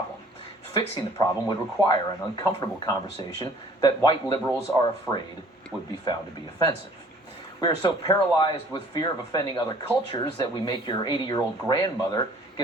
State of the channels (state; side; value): normal; both; correlation 0.54